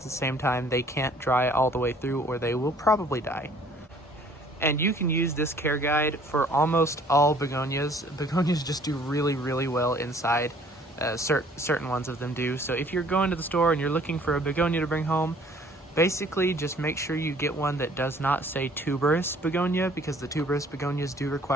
same time they can't dry all the way through or they will probably die. And you can use this care guide for almost all begonias. Begonias just do really, really well inside. Certain ones of them do. So if you're going to the store and you're looking for a begonia to bring home, basically just make sure you get one that does not say tuberous begonia, because the tuberous begonias do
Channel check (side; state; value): both; normal; correlation 0.56